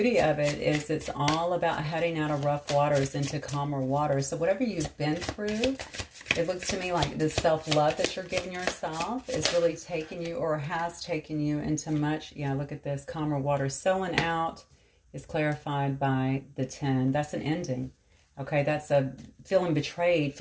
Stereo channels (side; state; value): both; identical; correlation 1.00